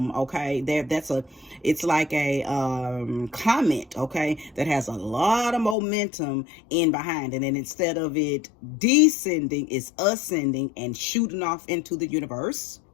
Okay, it's like a comet, okay, that has a lot of momentum in behind. And then instead of it descending, it's ascending and shooting off into the universe,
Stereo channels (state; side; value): drops out; right; at 5.8 s